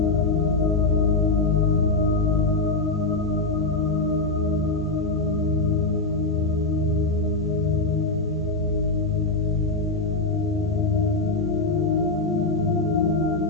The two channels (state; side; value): quieter; right; 3.3 dB